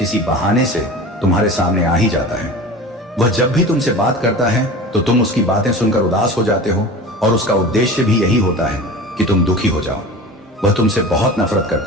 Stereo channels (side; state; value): both; normal; correlation 0.34